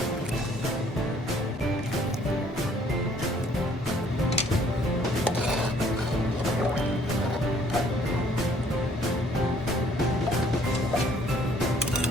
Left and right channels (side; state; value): both; normal; correlation 0.61